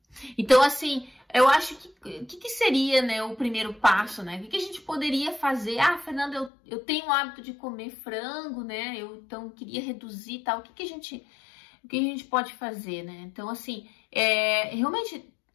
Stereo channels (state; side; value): drops out; right; at 6.5 s